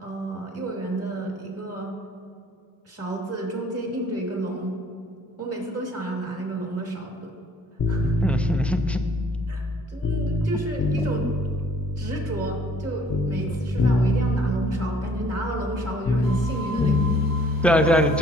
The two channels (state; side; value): normal; both; correlation 0.58